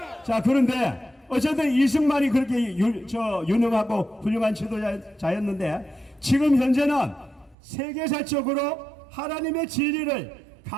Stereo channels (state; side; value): drops out; left; at 7.6 s